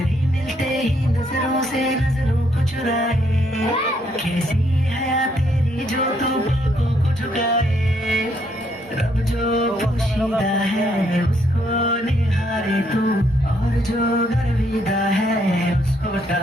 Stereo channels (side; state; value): both; normal; correlation 0.72